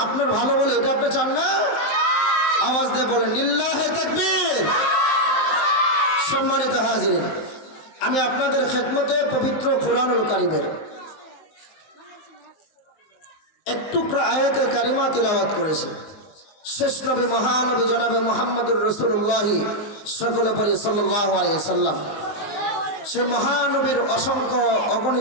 আপনার ভালো বলে এটা আপনি চান না? আওয়াজ দিয়ে বলেন লিল্লাহে তাকবীর। সম্মানিত হাজিরিন, আমি আপনাদের খেদমতে পবিত্র কুরআনুল কারীমের একটু আয়াতে কারিমা তিলাওয়াত করেছি। শেষ নবী মহানবী জনাবে মুহাম্মদুর রাসূলুল্লাহ সকলে পড়ি সাল্লাল্লাহু আলাইহি ওয়াসাল্লাম। সেই মহানবীর অসংখ্য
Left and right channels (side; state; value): right; late; 19 ms